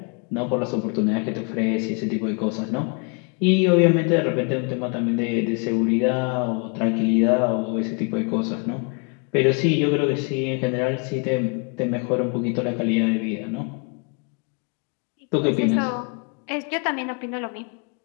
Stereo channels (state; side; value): quieter; right; 35.1 dB